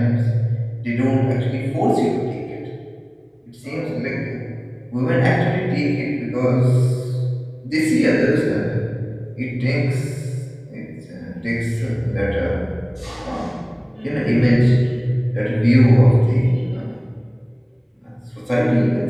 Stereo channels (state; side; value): identical; both; correlation 1.00